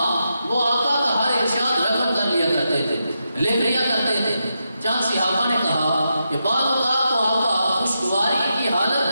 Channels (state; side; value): inverted; both; correlation -0.85